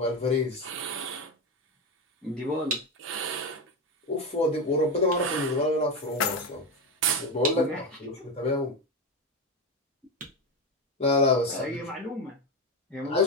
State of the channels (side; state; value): both; normal; correlation 0.15